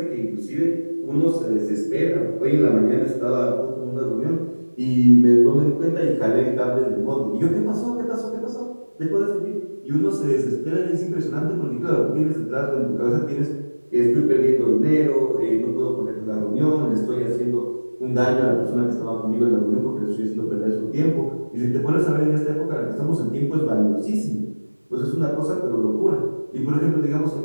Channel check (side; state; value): both; inverted; correlation -1.00